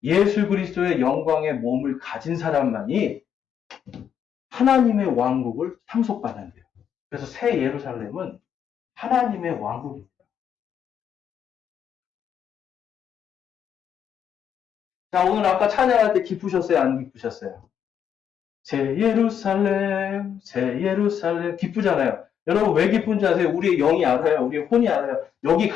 예수 그리스도의 영광의 몸을 가진 사람만이 하나님의 왕국을 상속받는데요. 그래서 새 예루살렘은 하나님의 왕국입니다. 자, 오늘 아까 찬양할 때 기쁘셨어요? 안 기쁘셨어요? 새 예루살렘, 새 예루살렘. 기쁘잖아요. 여러분 왜 기쁜지 아세요? 우리의 영이 알아요. 우리의 혼이 알아요. 여기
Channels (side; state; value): right; quieter; 8.5 dB